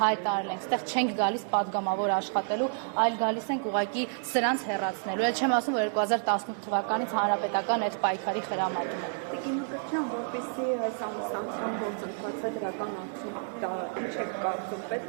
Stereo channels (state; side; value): silent; left; digital silence